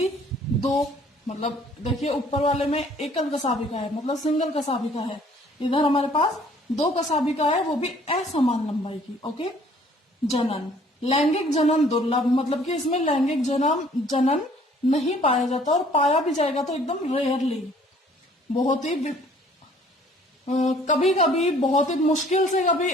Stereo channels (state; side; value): normal; both; correlation 0.57